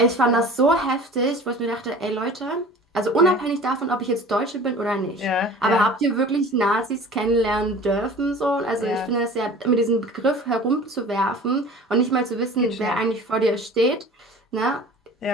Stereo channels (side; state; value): both; normal; correlation 0.42